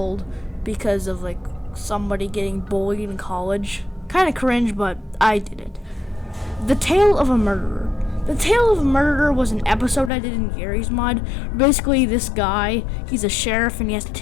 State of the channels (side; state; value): right; drops out; at 10.1 s